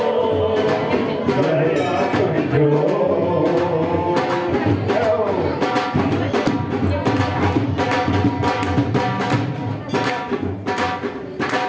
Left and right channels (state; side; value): identical; both; correlation 1.00